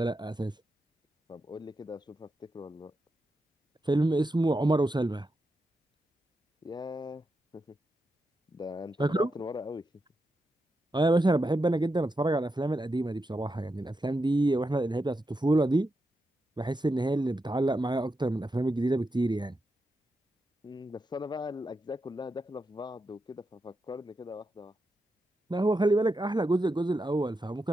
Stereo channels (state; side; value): normal; both; correlation 0.86